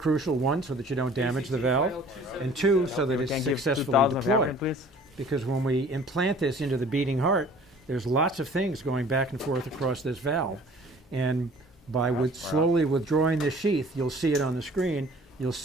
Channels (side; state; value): both; normal; correlation 0.50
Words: one, so that you don't damage the valve, and two, so that it's successfully deployed. Because when we implant this into the beating heart, there's lots of things going back and forth across this valve. And by slowly withdrawing this sheath, you'll see it on the screen, you'll